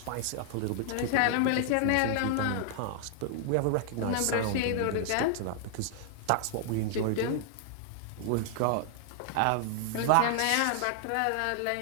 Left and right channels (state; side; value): different; both; correlation 0.00